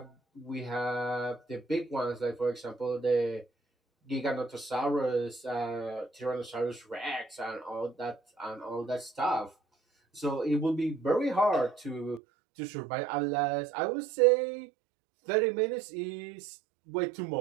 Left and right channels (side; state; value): left; drops out; at 12.2 s